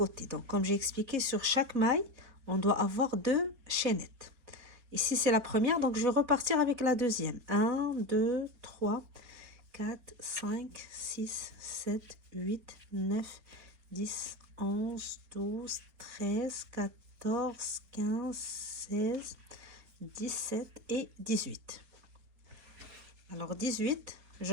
Donc comme j'ai expliqué, sur chaque maille, on doit avoir deux chaînettes. Ici, c'est la première. Donc je vais repartir avec la deuxième. 1, 2, 3, 4, 5, 6, 7, 8, 9, 10, 11, 12, 13, 14, 15, 16, 17 et 18. Alors 18, je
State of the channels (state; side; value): late; left; 4.3 ms